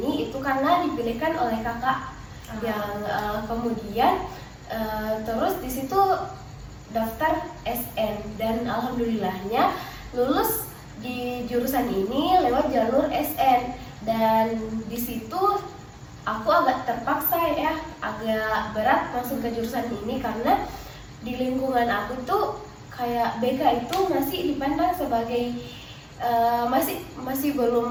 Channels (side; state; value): both; identical; correlation 1.00